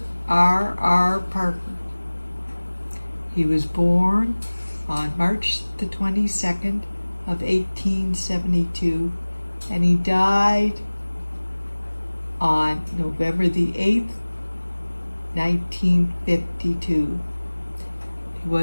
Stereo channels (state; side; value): inverted; both; correlation -1.00